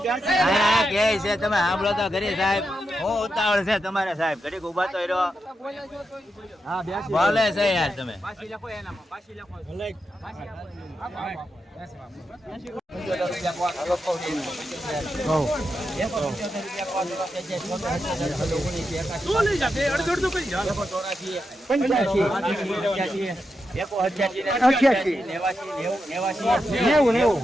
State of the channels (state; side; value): normal; both; correlation 0.86